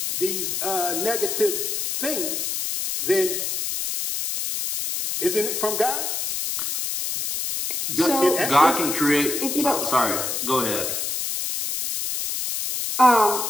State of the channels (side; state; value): left; noise; hiss, 2 dB below the sound